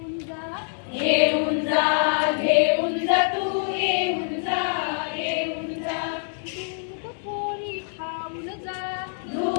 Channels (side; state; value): right; silent; digital silence